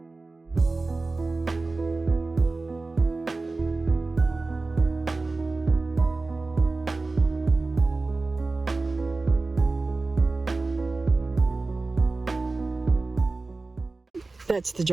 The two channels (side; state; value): left; quieter; 3.5 dB